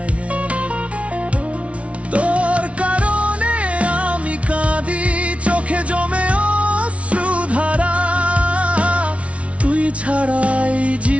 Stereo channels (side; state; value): left; late; 0.063 ms